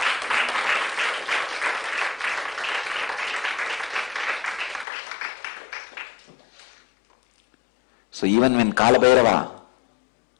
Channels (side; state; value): right; drops out; at 4.9 s